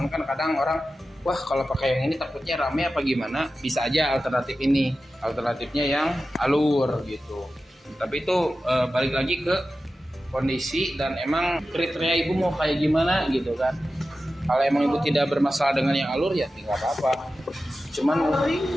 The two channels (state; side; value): normal; both; correlation 0.93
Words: kan kadang orang, wah kalau pakai yang ini takutnya rame apa gimana, bisa aja alternatif ini, alternatifnya yang alur gitu. Tapi itu balik lagi ke kondisi dan emang kriteria ibu mau kayak gimana gitu kan. Kalau emang ibu tidak bermasalah dengan yang alur ya tidak apa-apa. Cuman paling